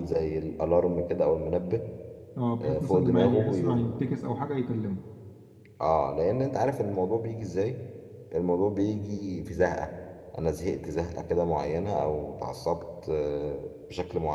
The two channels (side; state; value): both; identical; correlation 1.00